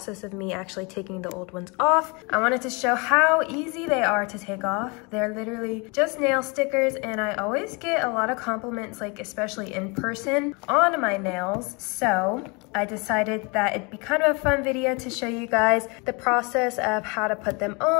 of me actually taking the old ones off. I wanted to show how easy they are to take off. They're literally just nail stickers, and I always get a lot of compliments, like especially in person, on my nails. So I decided that it'd be kind of a fun video to show you guys the process of how to put them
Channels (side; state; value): right; quieter; 29.9 dB